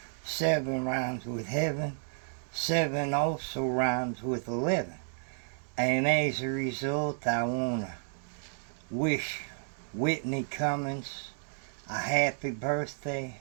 7 rhymes with heaven, 7 also rhymes with 11, and as a result I want to wish Whitney Cummings a happy birthday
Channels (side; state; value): left; silent; digital silence